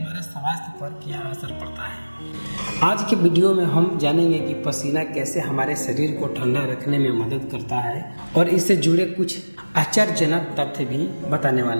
स्वास्थ्य पर क्या असर पड़ता है? आज के वीडियो में हम जानेंगे कि पसीना कैसे हमारे शरीर को ठंडा रखने में मदद करता है और इससे जुड़े कुछ आश्चर्यजनक तथ्य भी बताने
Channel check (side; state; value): both; inverted; correlation -1.00